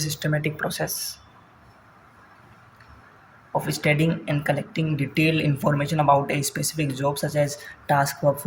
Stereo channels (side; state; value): both; identical; correlation 1.00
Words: process of studying and collecting detailed information about a specific job such as task